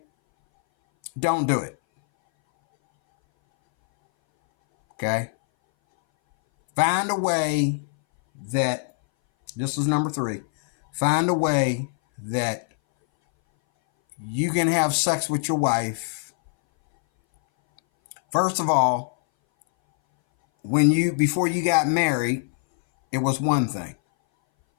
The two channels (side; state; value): right; silent; 60 dB below the other